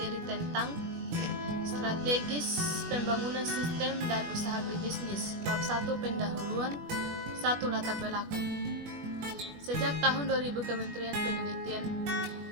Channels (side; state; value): left; late; 21 ms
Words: tentang strategis pembangunan sistem dan usaha berbisnis. Bab 1, pendahuluan. 1, latar belakang. Sejak tahun 2000 Kementerian Penelitian